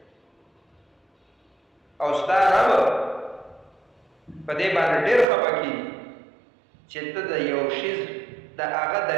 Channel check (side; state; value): left; drops out; at 5.2 s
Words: او ستا رب په دې باندې ډېر خفه کېږي چې ته د یو شیز د هغه د